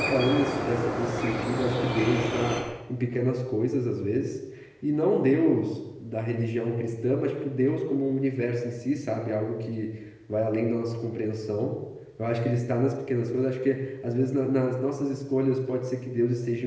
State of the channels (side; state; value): both; identical; correlation 1.00